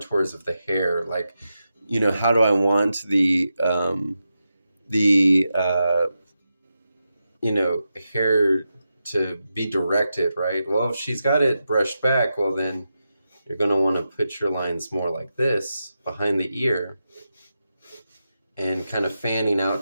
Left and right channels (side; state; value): both; inverted; correlation -0.89